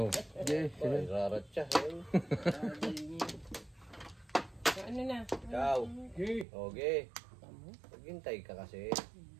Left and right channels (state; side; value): drops out; left; at 6.5 s